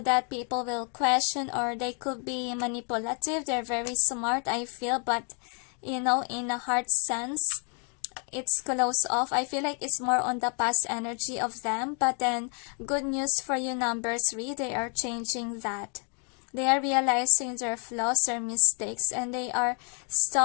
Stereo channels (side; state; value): right; quieter; 39.3 dB